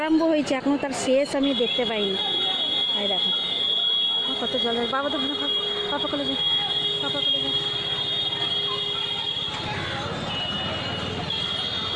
হয়েছে এখনও তার শেষ আমি দেখতে পাইনি। এই দেখো কত জল। বাবা তো পাপা কলে যায়, পাপা কলে যায়।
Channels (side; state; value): both; identical; correlation 1.00